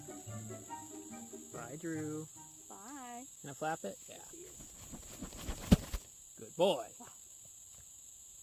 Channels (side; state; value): both; identical; correlation 1.00